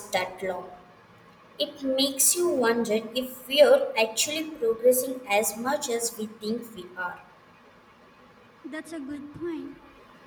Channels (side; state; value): both; identical; correlation 1.00